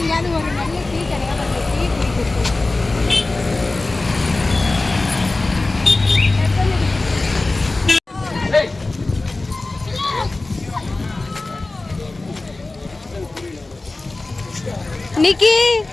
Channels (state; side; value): quieter; right; 3.1 dB